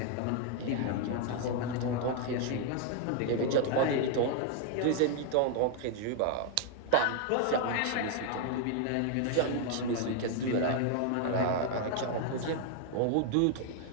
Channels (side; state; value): both; different; correlation 0.00